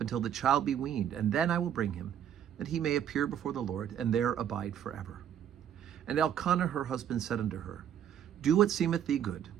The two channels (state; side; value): quieter; left; 9.6 dB